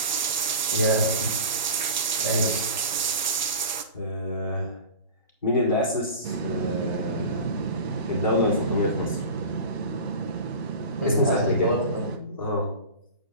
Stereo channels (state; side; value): inverted; both; correlation -0.34